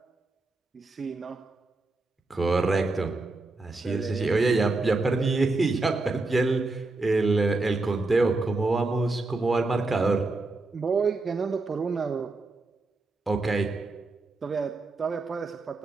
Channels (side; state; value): left; quieter; 3.3 dB